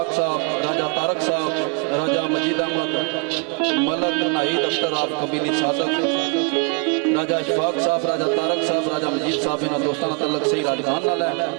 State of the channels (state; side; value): quieter; left; 34.9 dB